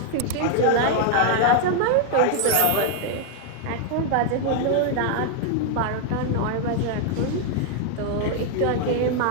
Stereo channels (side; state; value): both; different; correlation 0.00